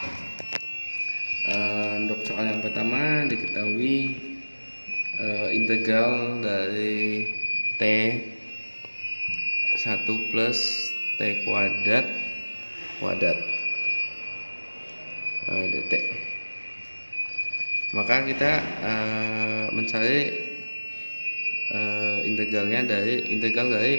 Untuk soal yang pertama, diketahui integral dari T 1 plus T kuadrat dt. Maka kita mencari integral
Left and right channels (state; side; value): inverted; both; correlation -1.00